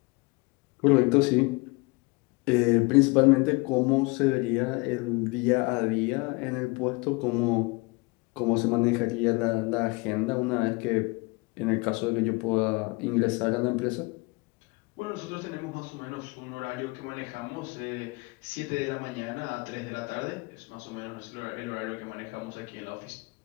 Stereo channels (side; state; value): right; quieter; 27.0 dB